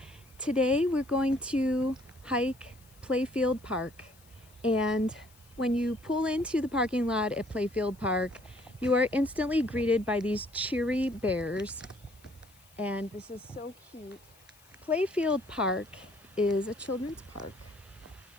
Today we're going to hike Playfield Park, and when you pull into the parking lot at Playfield Park, you are instantly greeted by these cheery bears, and this is so cute. Playfield Park is a children's park,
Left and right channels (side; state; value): left; noise; hiss, 28 dB below the sound